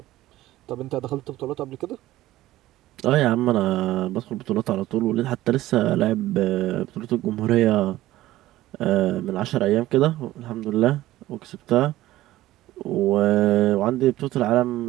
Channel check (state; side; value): quieter; left; 15.8 dB